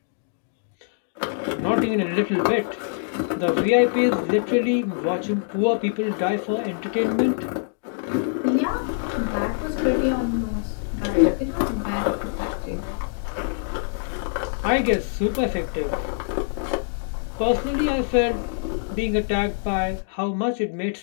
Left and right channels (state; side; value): silent; right; digital silence